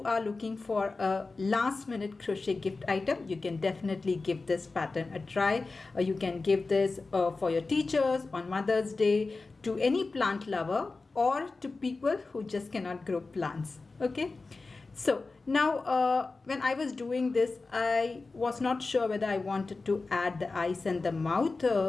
are looking for a last minute crochet gift item, you can definitely give this pattern a try. You can give this for your teachers on Mother's Day, to any plant lover, or to people who just cannot grow plants. Okay, so now when I was doing this, I was not sure whether I wanted to add the eyes and the mouth,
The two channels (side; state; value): right; quieter; 3.8 dB